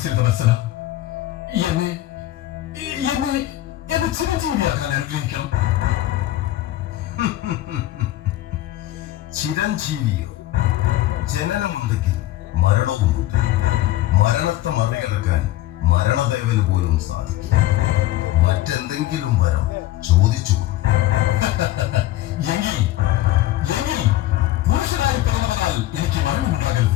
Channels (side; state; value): right; quieter; 15.1 dB